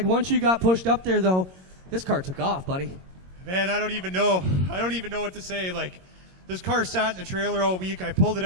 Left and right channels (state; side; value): late; left; 22 ms